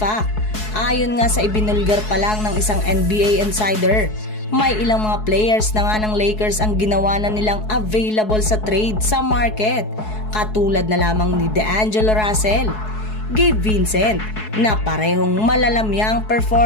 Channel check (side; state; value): right; late; 4.7 ms